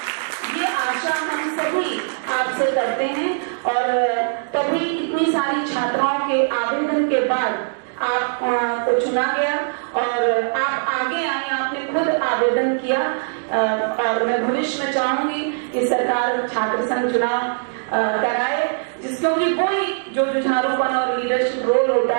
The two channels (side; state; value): left; silent; digital silence